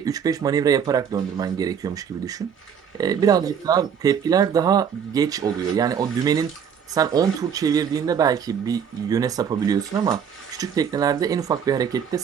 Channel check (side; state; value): left; quieter; 7.7 dB